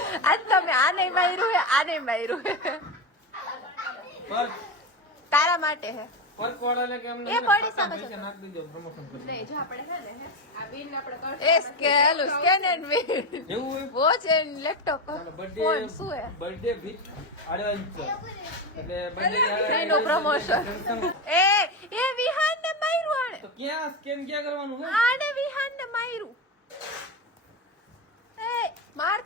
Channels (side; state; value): both; normal; correlation 0.16